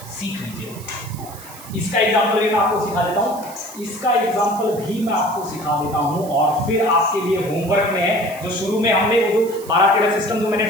इसका एग्जाम्पल भी मैं आपको सिखा देता हूँ, और फिर आपके लिए होमवर्क में है जो शुरू में हमने वो जो 12-13 सिस्टम जो मैंने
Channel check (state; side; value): noise; right; hiss, 17 dB below the sound